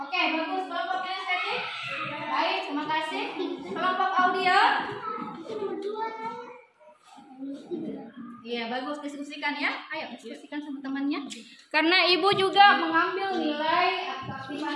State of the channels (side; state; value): both; identical; correlation 1.00